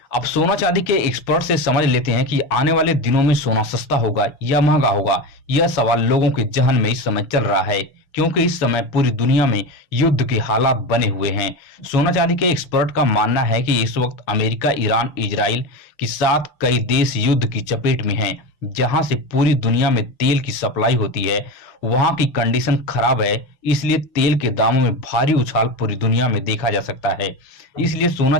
अब सोना चांदी के एक्सपर्ट से समझ लेते हैं कि आने वाले दिनों में सोना सस्ता होगा या महंगा होगा। यह सवाल लोगों के जहन में इस समय चल रहा है, क्योंकि इस समय पूरी दुनिया में युद्ध के हालात बने हुए हैं। सोना चांदी के एक्सपर्ट का मानना है कि इस वक्त अमेरिका, ईरान, इजराइल के साथ कई देश युद्ध की चपेट में हैं। जहां से पूरी दुनिया में तेल की सप्लाई होती है, वहां की कंडीशन खराब है, इसलिए तेल के दामों में भारी उछाल पूरी दुनिया में देखा जा सकता है। इसलिए सोना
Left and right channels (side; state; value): right; late; 7.2 ms